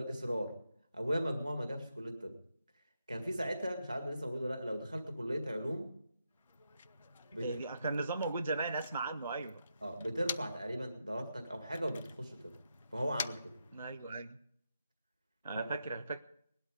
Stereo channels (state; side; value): inverted; both; correlation -0.84